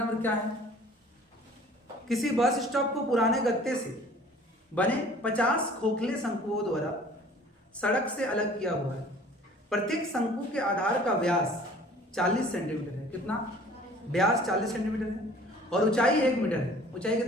क्या है। किसी बस स्टॉप को पुराने गत्ते से बने 50 खोखले शंकुओं द्वारा सड़क से अलग किया हुआ है। प्रत्येक शंकु के आधार का व्यास 40 सेंटीमीटर है। कितना? व्यास 40 सेंटीमीटर है और ऊंचाई 1 मीटर है। ऊंचाई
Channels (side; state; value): both; normal; correlation 0.50